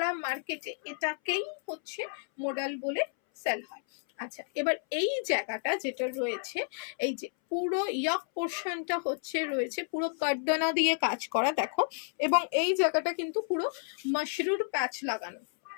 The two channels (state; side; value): silent; right; 57 dB below the other